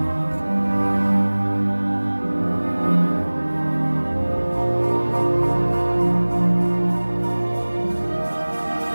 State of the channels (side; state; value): both; inverted; correlation -1.00